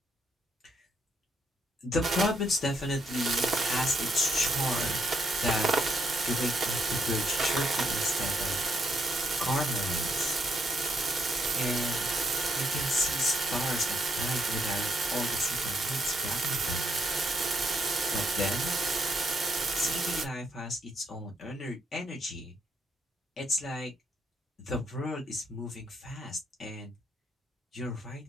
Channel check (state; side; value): normal; both; correlation 0.75